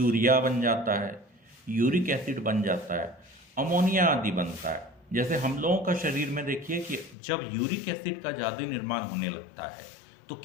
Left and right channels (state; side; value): drops out; right; at 7.2 s